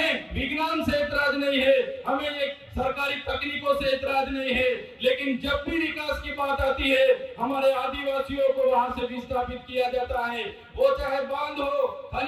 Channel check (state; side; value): identical; both; correlation 1.00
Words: विज्ञान से ऐतराज नहीं है, हमें एक सरकारी तकनीकों से ऐतराज नहीं है, लेकिन जब भी विकास की बात आती है हमारे आदिवासियों को वहां से विस्थापित किया जाता है। वो चाहे बांध हो,